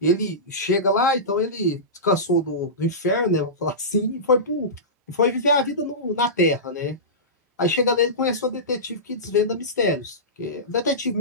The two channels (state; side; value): normal; both; correlation -0.19